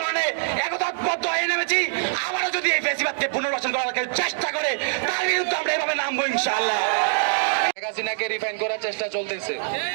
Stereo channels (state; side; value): silent; left; digital silence